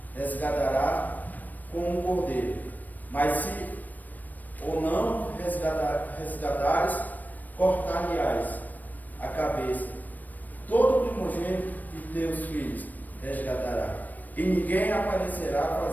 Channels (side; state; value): right; late; 0.084 ms